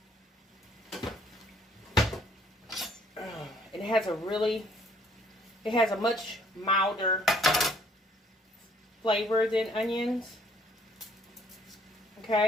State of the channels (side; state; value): both; normal; correlation 0.63